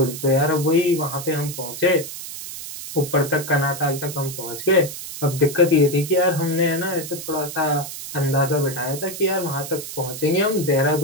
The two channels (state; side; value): noise; right; hiss, 9 dB below the sound